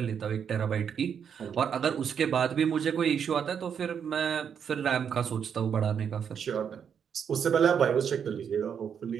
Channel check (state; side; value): quieter; left; 7.6 dB